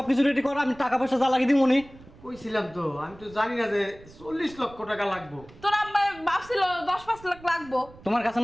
রেডি কর আমি টাকা পয়সা যা লাগিয়ে দিব উনি কইছিলাম তো, আমি তো জানি না যে 40 লক্ষ টাকা লাগবে। তোরা ভাবছিল 10-5 লাখ লাগবো তোমার কাছে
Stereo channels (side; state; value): right; noise; rumble, 22 dB below the sound